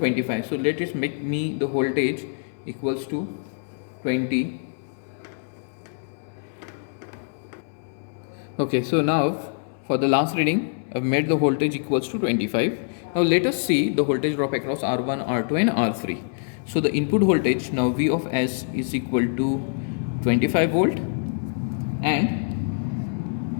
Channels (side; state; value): right; silent; digital silence